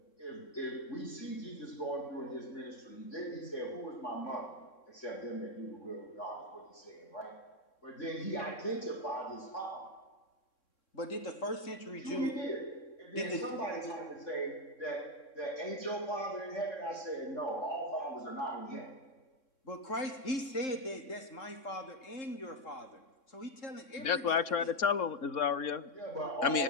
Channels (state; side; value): late; right; 3.6 ms